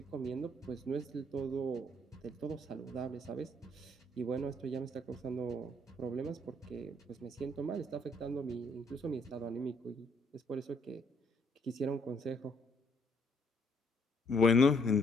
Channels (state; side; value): normal; both; correlation 0.68